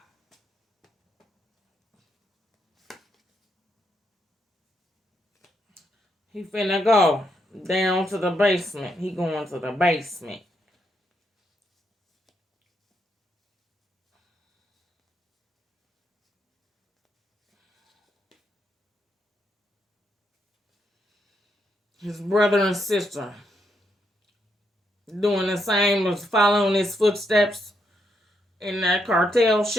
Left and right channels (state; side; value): normal; both; correlation 0.79